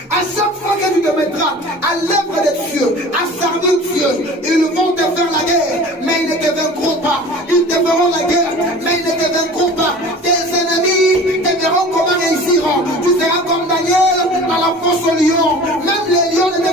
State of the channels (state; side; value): normal; both; correlation 0.41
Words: À chaque fois que tu te mettras à l'œuvre de Dieu, à servir Dieu, ils vont te faire la guerre, mais ils ne te vaincront pas. Ils te feront la guerre, mais ils ne te vaincront pas. Tes ennemis te verront comment réussir. Tu seras comme Daniel dans la fosse au lion. Même les lions ne te